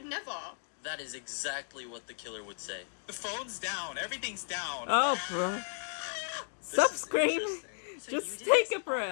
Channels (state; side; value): silent; right; digital silence